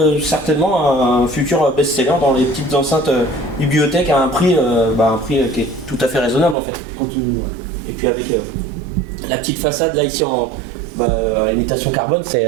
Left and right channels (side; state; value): left; drops out; at 6.6 s